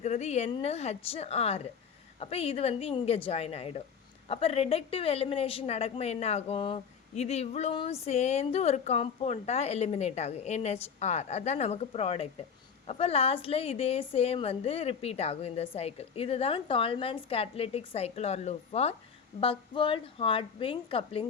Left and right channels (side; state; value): right; quieter; 6.7 dB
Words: NHR. அப்போ இது வந்து இங்கே ஜாயின் ஆகிடும். அப்போ ரிடக்டிவ் எலிமினேஷன் நடக்கும்போது என்ன ஆகும், இது இவ்வளவும் சேர்ந்து ஒரு காம்பவுண்டாக எலிமினேட் ஆகும், NHR. அதுதான் நமக்கு ப்ராடக்ட். அப்போ லாஸ்ட்டில் இதே சேம் வந்து ரிப்பீட் ஆகும் இந்த சைக்கிள். இதுதான் Tolman's catalytic cycle or loop for Buchwald Hartwig